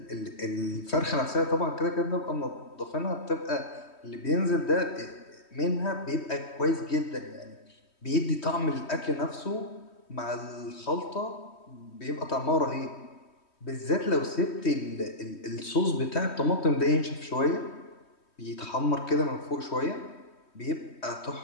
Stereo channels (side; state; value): right; late; 3.2 ms